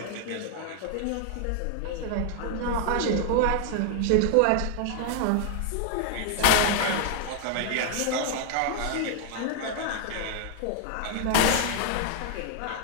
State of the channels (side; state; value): both; different; correlation 0.00